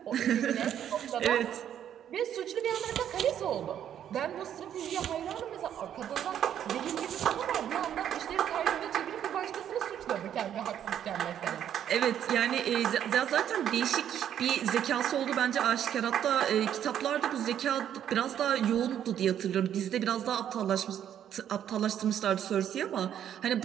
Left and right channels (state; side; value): quieter; left; 10.0 dB